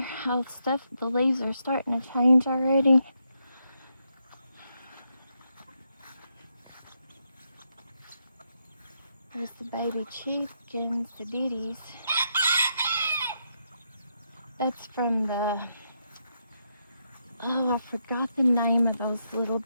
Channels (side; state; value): both; inverted; correlation -0.80